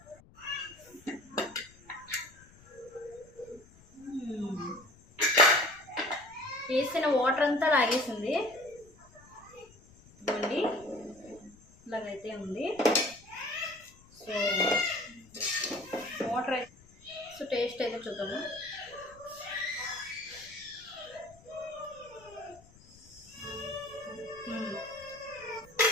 వేసిన వాటర్ అంతా లాగేసింది, ఇవ్వండి ఇలాగైతే ఉంది. సో వాటర్ అయితే టేస్ట్ అయితే చూద్దాము.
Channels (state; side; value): noise; left; rumble, 25 dB below the sound